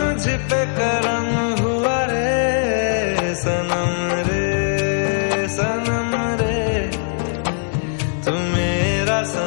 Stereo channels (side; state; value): right; silent; digital silence